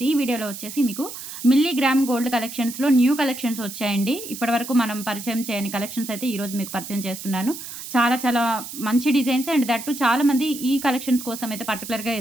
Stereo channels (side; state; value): right; noise; hiss, 10 dB below the sound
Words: ఈ వీడియోలో వచ్చేసి మీకు మిల్లీగ్రామ్ గోల్డ్ కలెక్షన్స్లో న్యూ కలెక్షన్స్ వచ్చాయండి. ఇప్పటివరకు మనం పరిచయం చేయని కలెక్షన్స్ అయితే ఈరోజు మీకు పరిచయం చేస్తున్నాను. చాలా చాలా మంచి డిజైన్స్ అండ్ దట్టు చాలామంది ఈ కలెక్షన్స్ కోసం అయితే పర్టికులర్గా